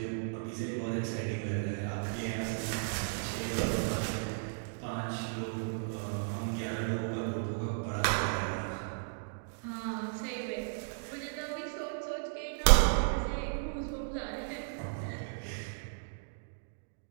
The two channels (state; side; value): silent; left; digital silence